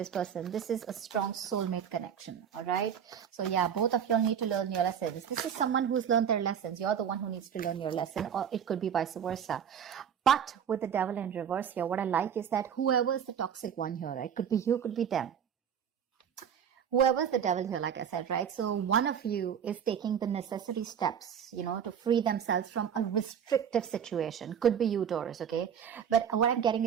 person. This is a strong soulmate connection, all right? So yeah, both of you all need to learn your lessons. This is someone who's learned their lessons. You're the one who needs to learn your lesson, or it could be vice versa. But with the Devil in reverse here, what I like is that whoever is the toxic one here, right? Could be you, could be them. Whoever's the devil here, like I said, right? So one of you is taking the necessary steps, to free themselves from a restrictive situation. Could be you, Taurus, okay? But what I'm getting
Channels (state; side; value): quieter; left; 8.3 dB